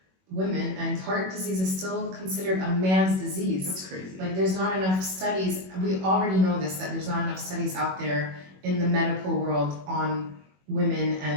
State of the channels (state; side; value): late; left; 21 ms